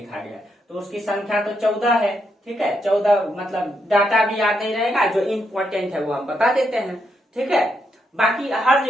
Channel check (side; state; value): both; normal; correlation 0.79